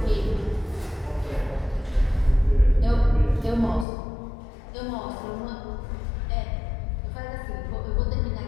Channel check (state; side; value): drops out; right; at 3.9 s